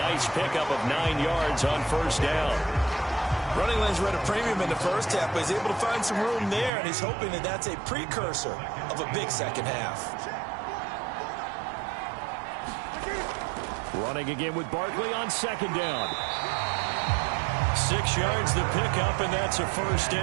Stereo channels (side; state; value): left; drops out; at 6.7 s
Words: pickup of 9 yards on 1st down. Running lanes were at a premium in the first half, but he's able to find some room there, and he's hoping that that's a precursor of a big second half. Running again with Barkley on 2nd down. 6 yards the pickup, and that's a 1st